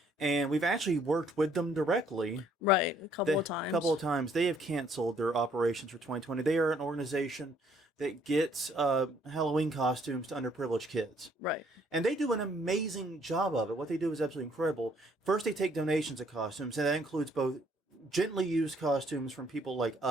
and we've actually worked with them directly. Right, a couple of times. They have canceled their operations for 2020. They are an organization that gets Halloween costumes to underprivileged kids. Right. And they do an amazing job of it. What they do is absolutely incredible. First, they take donations of costumes, and that includes both gently used costumes from people like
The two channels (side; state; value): both; normal; correlation 0.65